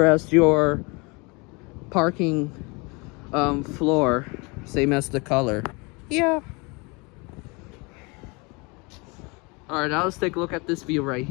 as your parking floor, same as the color. Yeah. Alright, now let's take a look at this view right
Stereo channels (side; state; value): right; quieter; 28.3 dB